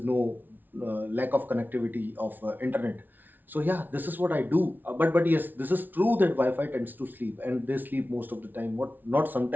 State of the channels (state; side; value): late; left; 0.087 ms